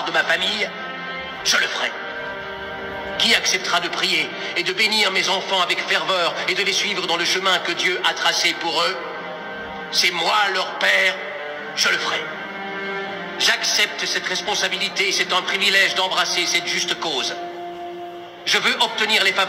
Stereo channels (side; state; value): both; identical; correlation 1.00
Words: de ma famille? Je le ferai. Qui acceptera de prier et de bénir mes enfants avec ferveur et de les suivre dans le chemin que Dieu a tracé pour eux? C'est moi leur père, je le ferai. J'accepte cette responsabilité et c'est un privilège d'embrasser cette juste cause. Je veux obtenir les